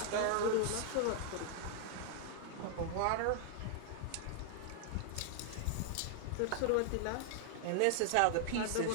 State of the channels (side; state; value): both; different; correlation 0.00